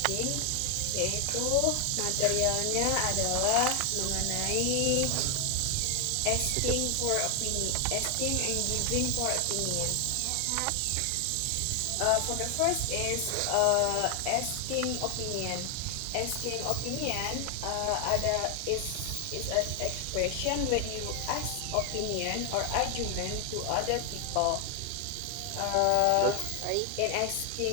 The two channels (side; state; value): both; different; correlation 0.00